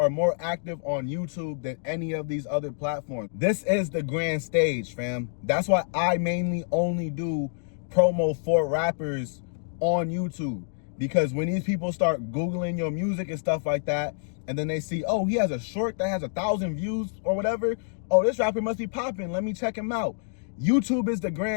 more active on YouTube than any of these other platforms. This is the grand stage, fam. That's why I mainly only do promo for rappers on YouTube. Because when these people start Googling your music and stuff like that, and then they see, oh, he has a short that has 1,000 views or whatever. Oh, this rapper must be popping. Let me check him out. YouTube is the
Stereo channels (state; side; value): silent; right; digital silence